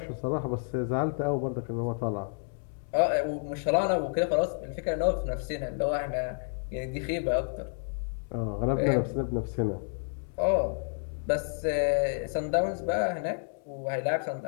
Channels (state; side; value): silent; right; digital silence